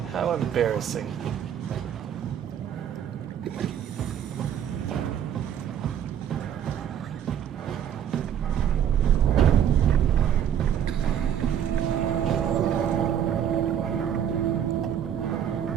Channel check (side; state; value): left; quieter; 9.3 dB